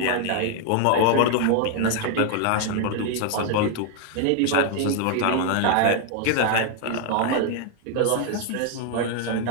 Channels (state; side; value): different; both; correlation 0.00